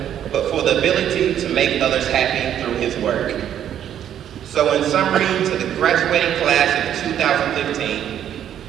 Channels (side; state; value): left; quieter; 10.2 dB